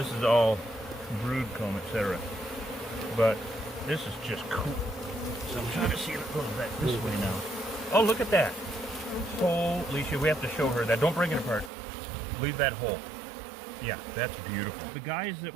is all brood comb, etc. But this is just cool. So I'm trying to see if it goes back this way now. Oh, look at that. Holy shit, we have to show her that. Don't break it apart. Leave that hole. Yeah, that's beautiful. The guys that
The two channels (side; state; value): left; drops out; at 11.7 s